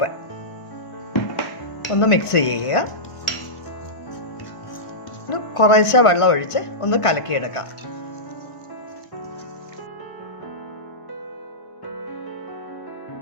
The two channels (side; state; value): right; late; 1.5 ms